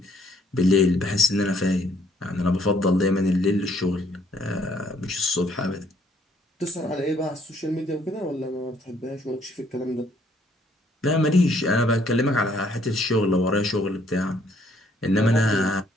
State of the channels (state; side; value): normal; both; correlation 0.65